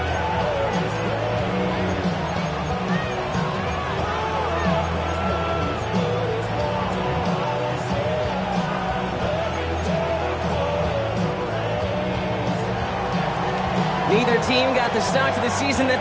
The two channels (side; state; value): right; noise; rumble, 26 dB below the sound